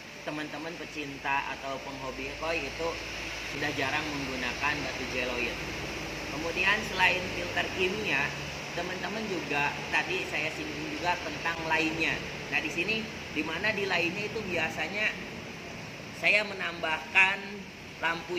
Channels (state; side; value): identical; both; correlation 1.00